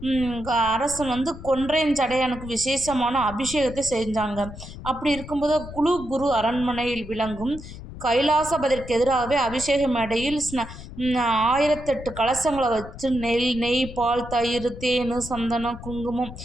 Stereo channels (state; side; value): noise; left; rumble, 13 dB below the sound